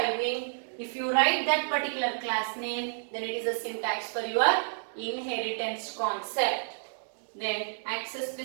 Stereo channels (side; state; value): left; silent; digital silence